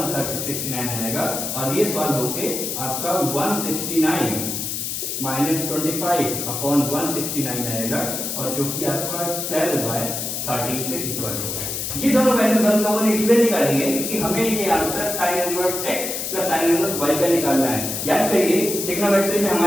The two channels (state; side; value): noise; left; hiss, 3 dB below the sound